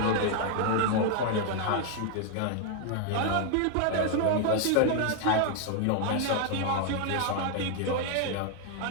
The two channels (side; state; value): both; different; correlation 0.00